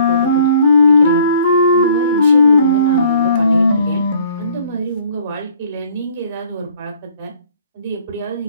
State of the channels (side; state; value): both; inverted; correlation -0.57